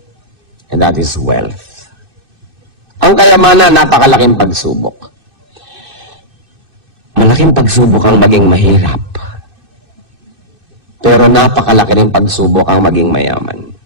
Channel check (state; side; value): late; left; 2.6 ms